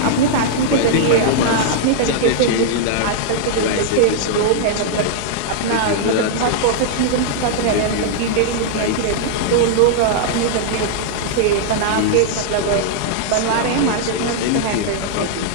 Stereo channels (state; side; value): different; both; correlation -0.01